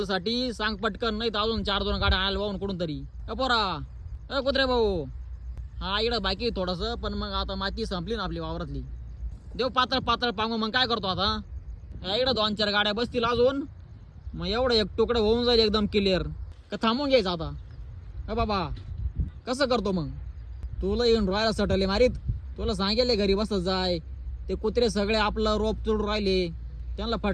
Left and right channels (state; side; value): identical; both; correlation 1.00